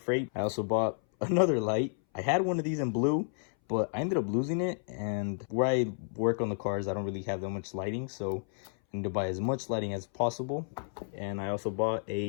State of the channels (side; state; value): right; silent; 57 dB below the other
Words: I also bought another light. I had one of these in blue, but I ended up losing it, and where I work on the cars, I don't really have that much lighting, so I need to buy as much lighting as possible. And I also bought